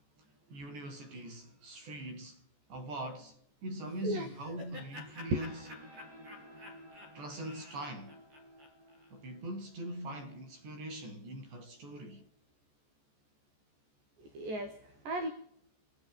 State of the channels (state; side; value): late; left; 14 ms